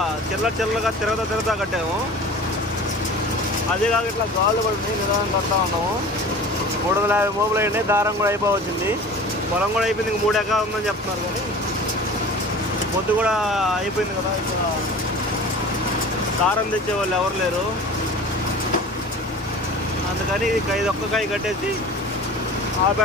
చిల్లగా తిరగతా కట్టాము. అదే కాక ఇట్లా గాళ్ళు పడి నిదానం కడతా ఉన్నాము. 350 మోపులు అయ్యింది. దారం కూడా అయిపోవచ్చింది. పొలం కూడా అయిపోయింది. ఇంక 3 ఎకరాలు ఉందని చెప్తున్నారు. కానీ పొద్దు కూడా అయిపోయింది కదా. ఇక్కడ దారం తెచ్చేవాళ్ళు ఎవరు లేరు. అందుకని ఇది ఒక్క కాయ కట్టేసి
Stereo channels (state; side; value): normal; both; correlation 0.39